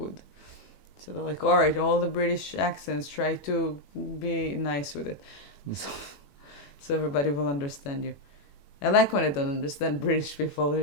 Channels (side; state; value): right; late; 21 ms